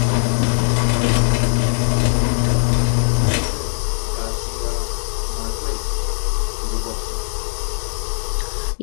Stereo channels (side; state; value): right; silent; digital silence